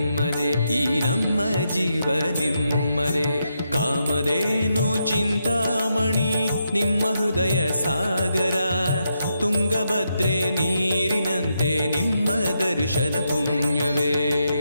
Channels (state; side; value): inverted; both; correlation -0.82